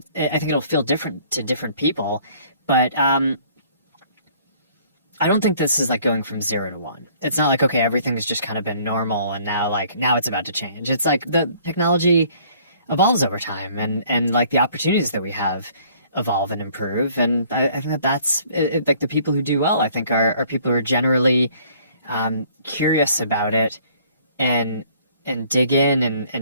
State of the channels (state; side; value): inverted; both; correlation -0.58